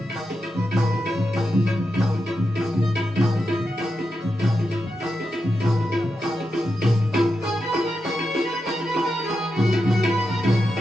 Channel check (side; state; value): both; normal; correlation 0.87